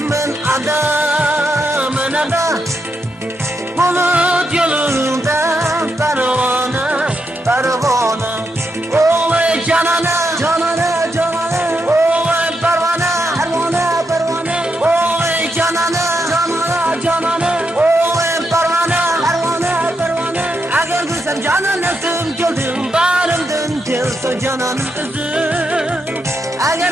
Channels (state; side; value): normal; both; correlation 0.83